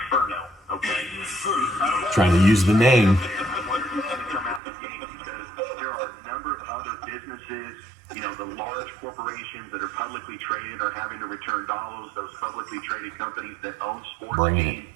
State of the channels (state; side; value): drops out; left; at 4.6 s